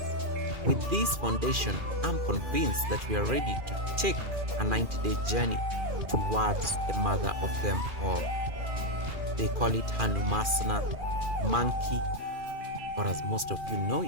With this foundation, I'm convinced that we are ready to take a 90-day journey towards the mother of them all. They call it hanumanasana, monkey, or as most of you know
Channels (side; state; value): left; late; 2.4 ms